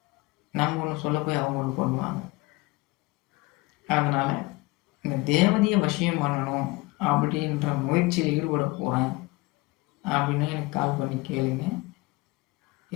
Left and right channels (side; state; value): right; quieter; 22.7 dB